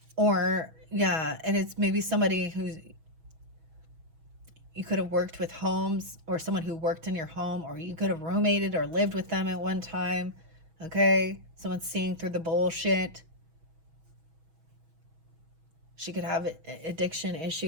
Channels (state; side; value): late; left; 6.2 ms